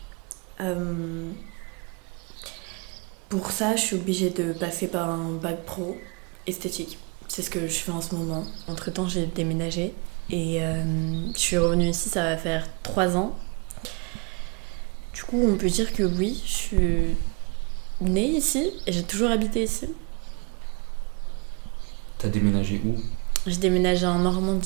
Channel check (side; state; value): left; quieter; 32.3 dB